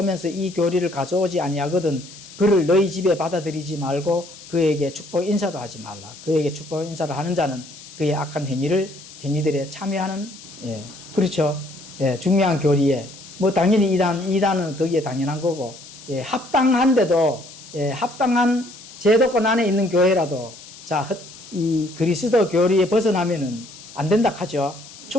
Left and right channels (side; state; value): left; noise; hiss, 18 dB below the sound